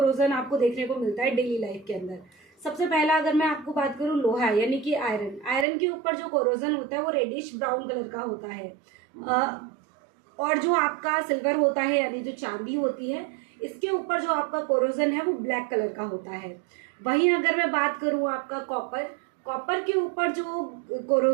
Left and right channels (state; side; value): drops out; left; at 5.7 s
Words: आपको देखने को मिलता है डेली लाइफ के अंदर। सबसे पहला अगर मैं आपको बात करूँ लोहा यानी कि आयरन, आयरन के ऊपर जो कोरोजन होता है वो रेडिश ब्राउन कलर का होता है। और जो आपका सिल्वर होता है यानी जो चांदी होती है, इसके ऊपर जो आपका कोरोजन है वो ब्लैक कलर का होता है। वहीं अगर मैं बात करूँ आपका कॉपर, कॉपर के ऊपर जो